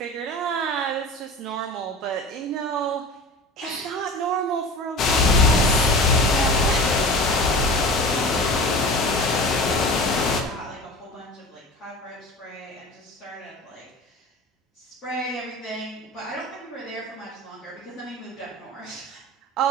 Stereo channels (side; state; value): both; normal; correlation 0.35